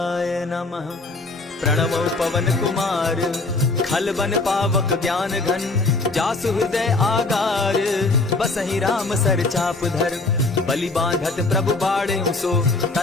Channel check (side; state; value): right; quieter; 3.4 dB